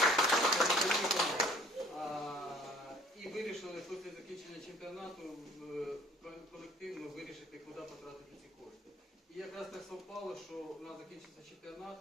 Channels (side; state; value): both; normal; correlation 0.55